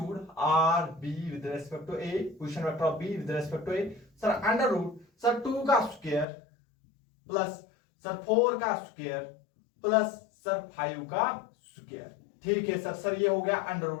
R B with respect to A, position vector of B with respect to A, sir under root sir 2 का स्क्वायर प्लस सर 4 का स्क्वायर प्लस सर 5 का स्क्वायर। ठीक है सर। सर ये हो गया अंडर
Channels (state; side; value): drops out; right; at 6.2 s